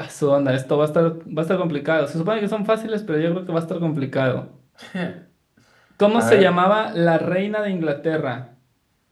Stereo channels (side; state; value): both; identical; correlation 1.00